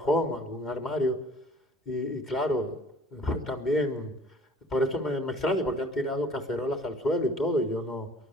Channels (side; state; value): both; normal; correlation 0.51